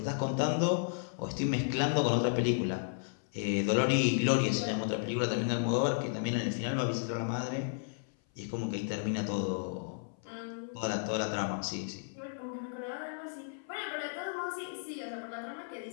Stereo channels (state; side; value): silent; right; 55 dB below the other